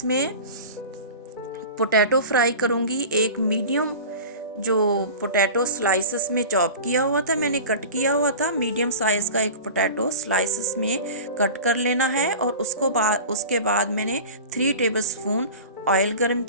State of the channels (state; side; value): inverted; both; correlation -0.35